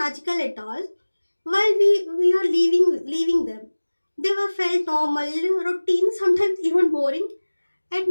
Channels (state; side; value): inverted; both; correlation -1.00